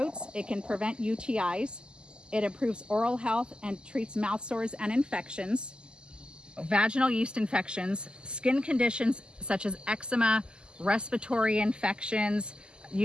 It can prevent UTIs. It improves oral health and treats mouth sores and infections, vaginal yeast infections, skin conditions such as eczema, respiratory infections,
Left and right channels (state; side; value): late; left; 0.048 ms